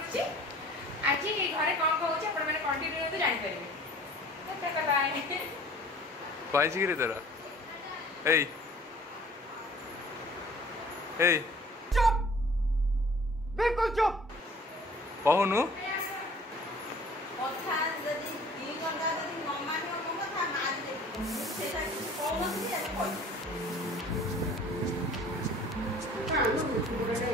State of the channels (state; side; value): normal; both; correlation 0.49